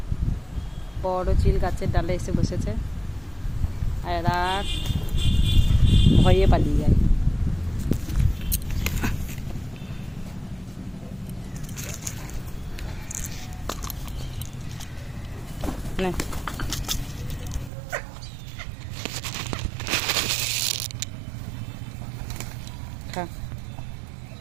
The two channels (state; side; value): drops out; left; at 17.7 s